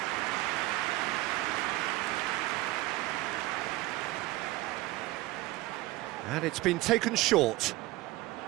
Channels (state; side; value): quieter; left; 18.3 dB